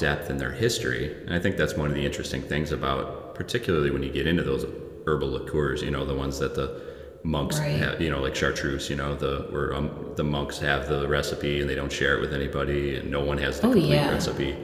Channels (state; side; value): identical; both; correlation 1.00